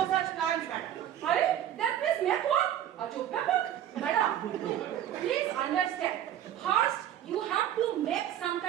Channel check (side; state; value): left; quieter; 11.1 dB